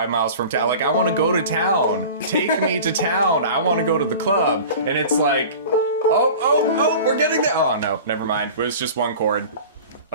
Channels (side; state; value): both; inverted; correlation -0.38